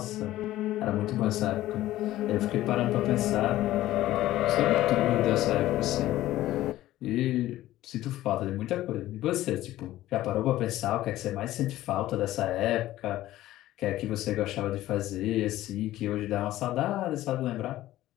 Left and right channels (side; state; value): right; quieter; 15.0 dB